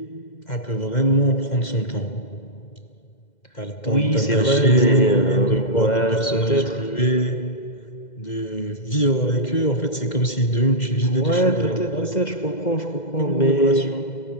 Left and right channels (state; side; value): late; right; 2.0 ms